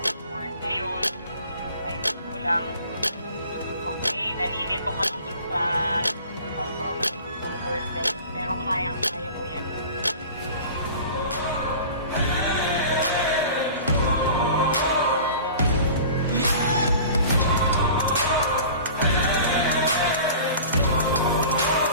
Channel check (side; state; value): both; inverted; correlation -0.41